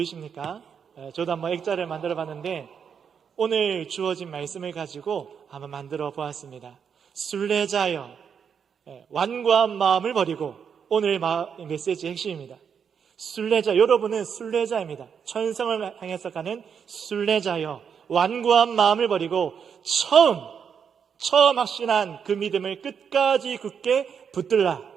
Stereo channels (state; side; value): quieter; left; 7.1 dB